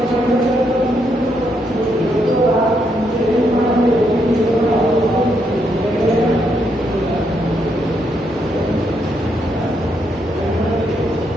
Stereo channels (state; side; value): normal; both; correlation 0.77